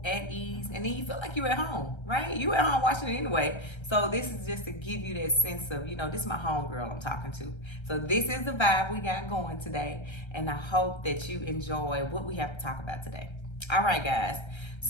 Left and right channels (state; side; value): late; right; 1.3 ms